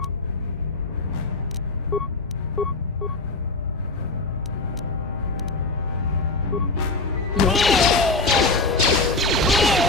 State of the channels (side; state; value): right; quieter; 3.3 dB